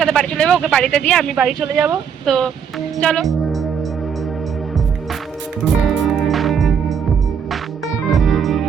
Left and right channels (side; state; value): left; quieter; 7.2 dB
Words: বাড়ি চলে যাবো, ওকে বাড়িতে দিয়ে আমি বাড়ি চলে যাব। তো চলো।